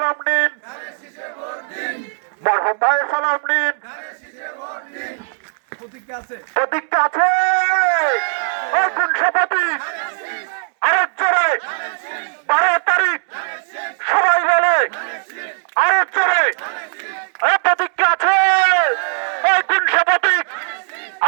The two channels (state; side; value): silent; left; 67 dB below the other